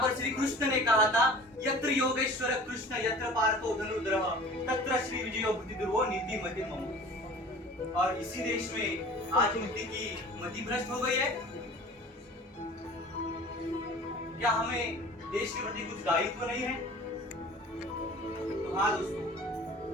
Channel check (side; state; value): both; normal; correlation 0.43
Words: पर श्री कृष्ण ने कहा था, यत्र योगेश्वर कृष्ण यत्र पार्थो धनुर्धरः तत्र श्री विजयो बुद्धिर्भो नीति मति मम। और इसी देश में आज नीति की मति भ्रष्ट हो गई है। क्या हमें देश के प्रति कुछ दायित्व नहीं है? तो हाँ दोस्तों,